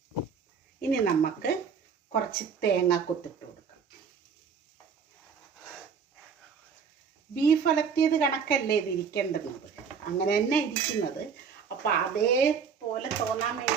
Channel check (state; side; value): quieter; left; 6.2 dB